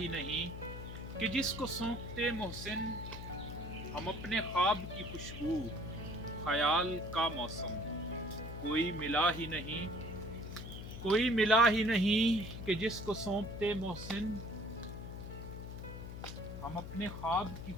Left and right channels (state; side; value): noise; left; hum, 9 dB below the sound